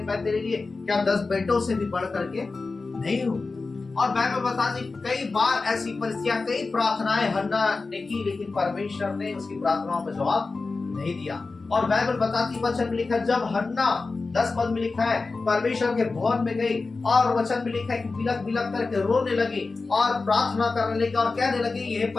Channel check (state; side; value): quieter; right; 3.9 dB